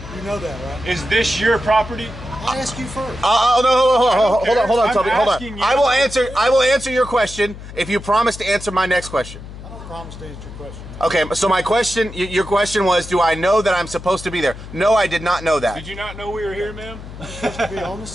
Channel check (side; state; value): left; noise; hum, 13 dB below the sound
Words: You know that, right? Is this your property? I ask you first. No, hold on, Toby, hold on. asking you. I will answer your question if you promise to answer my next question. I don't promise to answer your question. Okay, so my question, your question was, do I know that I'm supposed to be there? No, I did not know that. Did you not know we were here, ma'am? You're supposed to be on the